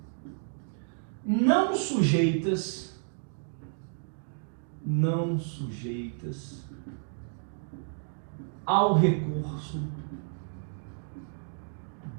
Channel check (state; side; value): silent; left; digital silence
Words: não sujeitas ao recurso